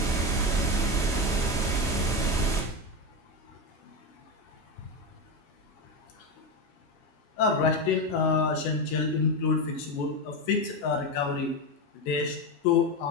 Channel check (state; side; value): normal; both; correlation 0.14